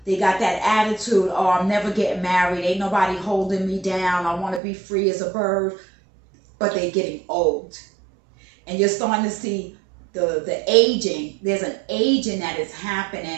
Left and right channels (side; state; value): left; drops out; at 4.6 s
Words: they got that attitude, oh, I'm never getting married, ain't nobody holding me down, I want to be free as a bird. But they're getting old. And you're starting to see the aging. There's an aging that is